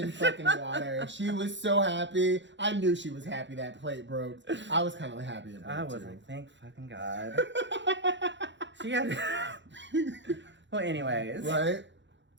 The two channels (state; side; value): late; left; 0.53 ms